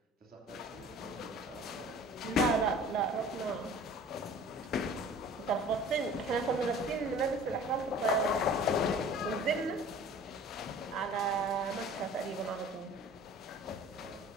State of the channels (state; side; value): normal; both; correlation 0.45